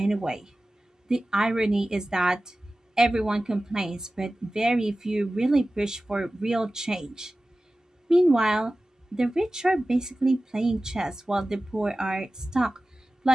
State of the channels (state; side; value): normal; both; correlation 0.96